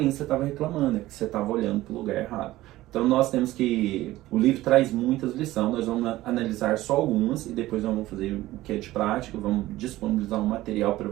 estava reclamando, é que você estava olhando para o lugar errado. Então nós temos que... O livro traz muitas lições, nós vamos analisar só algumas, e depois nós vamos fazer o que é de prática, vamos disponibilizar um material para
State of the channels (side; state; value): left; quieter; 16.5 dB